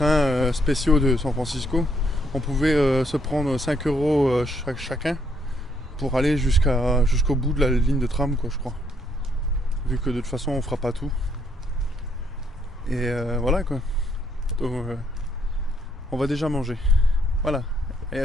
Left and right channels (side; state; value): both; normal; correlation 0.71